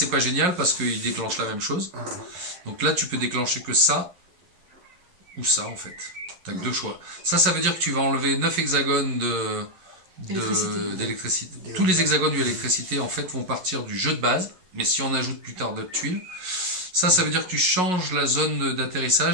pas génial parce qu'ils déclenchent la même chose. Donc là, tu peux déclencher que ça ou ça en fait. Tu n'as que 2 choix. Ça veut dire que tu vas enlever 9 hexagones d'électricité. Tous les hexagones d'électricité en fait vont partir du jeu de base. Mais si on ajoute plus tard d'autres tuiles, ça veut dire que tu changes la zone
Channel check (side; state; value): left; late; 11 ms